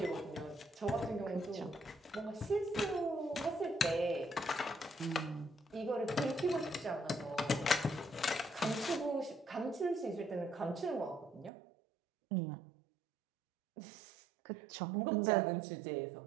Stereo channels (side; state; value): left; drops out; at 11.5 s